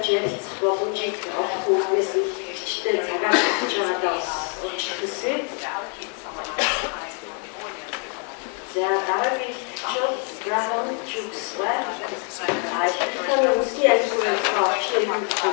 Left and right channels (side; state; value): right; quieter; 39.8 dB